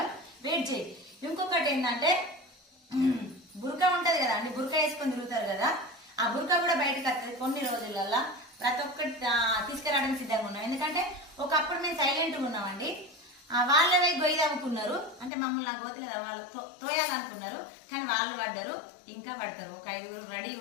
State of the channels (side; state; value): right; drops out; at 15.3 s